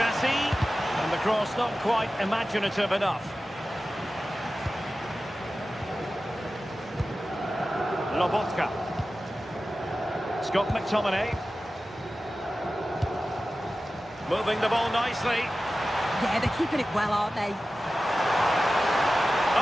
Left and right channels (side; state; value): both; normal; correlation 0.95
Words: And the cross not quite imaginative enough. Lobotka. Scott McTominay. Moving the ball nicely. Yeah, they're keeping it well, aren't they?